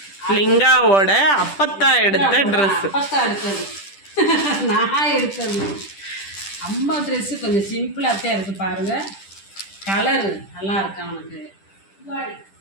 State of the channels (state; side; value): late; right; 10 ms